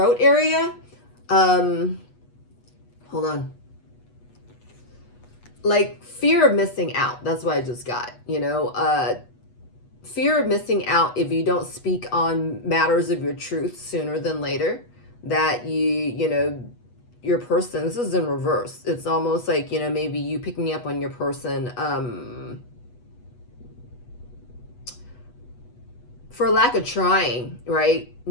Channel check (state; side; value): late; right; 8.2 ms